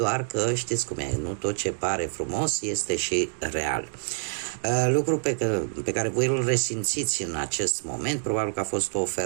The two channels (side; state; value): left; silent; 60 dB below the other